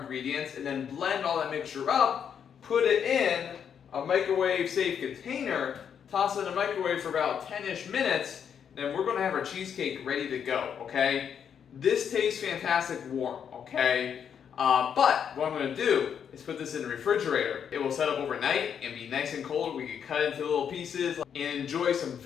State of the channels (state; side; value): quieter; right; 7.9 dB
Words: and then blend all that mixture up, put it in a microwave safe container, toss it in the microwave for about 10-ish minutes, then we're going to have our cheesecake ready to go, okay? This tastes fantastic warm, okay? But what I'm going to do is put this in the refrigerator. It will set up overnight and be nice and cold. We can cut it into little pieces and enjoy some